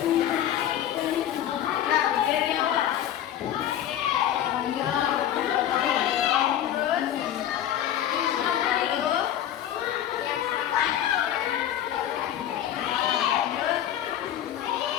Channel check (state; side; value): quieter; right; 11.1 dB